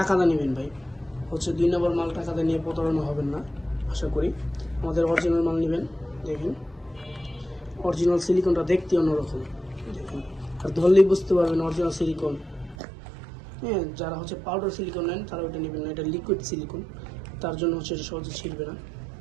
নেবেন ভাই। হচ্ছে 2 নম্বর মাল টাকাটা নিয়ে প্রতারণা হবেন না আশা করি। আমাদের অরিজিনাল মাল নেবেন। দেখেন অরিজিনাল সিলিকনটা দেখতে অন্যরকম, দেখেন আর ধরলেই বুঝতে পারবেন অরিজিনাল সিলিকন। হ্যাঁ, যারা হচ্ছে পাউডার সিলিকন নেন তারা ওটা নেবেন না, এটা লিকুইড সিলিকন, তার জন্য হচ্ছে এটা সহজে ছিঁড়বে না।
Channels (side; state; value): left; drops out; at 12.8 s